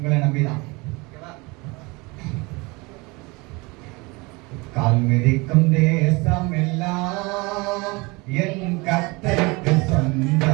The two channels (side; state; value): left; quieter; 25.6 dB